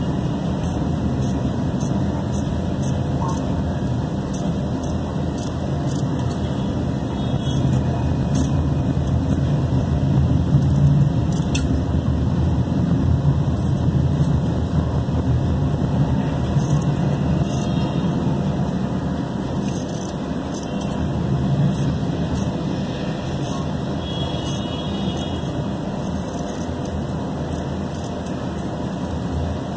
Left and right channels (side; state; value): both; identical; correlation 1.00